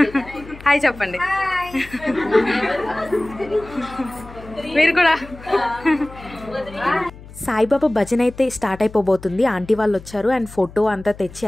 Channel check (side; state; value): left; noise; hum, 18 dB below the sound